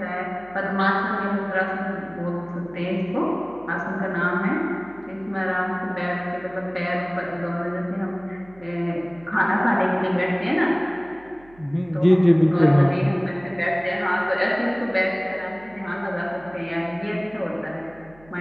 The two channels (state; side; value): noise; right; hum, 25 dB below the sound